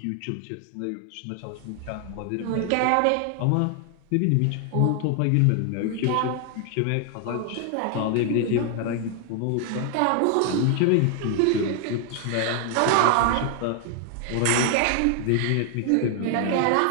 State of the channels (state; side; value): different; both; correlation 0.00